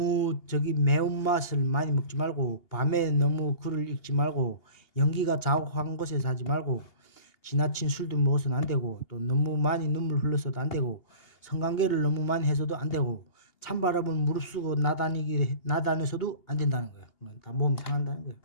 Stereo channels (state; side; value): late; right; 2.8 ms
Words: 매운맛을 많이 먹지 말고 밤에 너무 글을 읽지 말고 연기가 자욱한 곳에서 하지 말고 지나친 술도 먹어서는 안 되고 또 너무 많이 눈물 흘려서도 안 되고 성관계를 너무 많이 해서도 안 되고 찬바람을 무릅쓰고 나다녀서도 안 된다는 거예요. 다 몸이 상한다는 거예요.